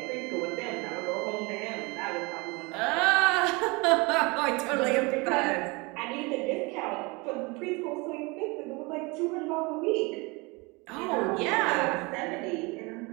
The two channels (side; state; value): left; quieter; 26.5 dB